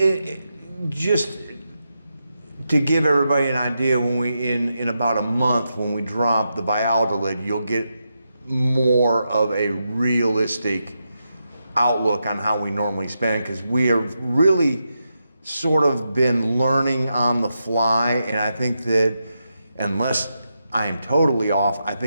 just to give everybody an idea, when we in about a month, when we drop the Valladolid, you'll get more of a realistic outlook on how we normally spend, because we have really sort of been learning on the fly, and I think that unless I am totally off, I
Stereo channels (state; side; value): inverted; both; correlation -0.86